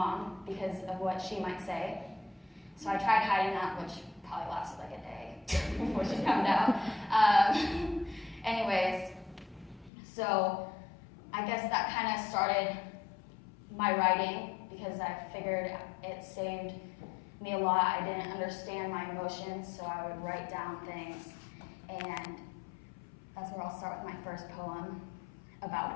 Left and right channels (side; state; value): right; drops out; at 9.9 s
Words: because of what she might say. So I tried hiding that, which probably lasted like a day before she found out. Anyways, so I guess that kind of started my writing, because I figured it saved me a lot. I didn't understand my emotions, so I would write down things. And that's where I'll start with my first poem